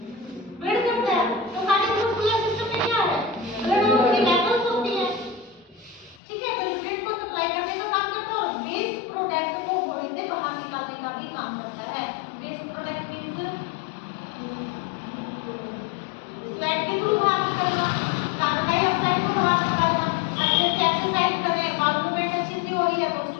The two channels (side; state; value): right; drops out; at 6.2 s